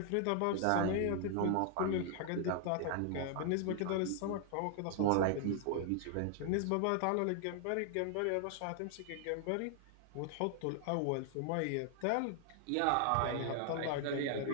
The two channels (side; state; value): both; different; correlation 0.00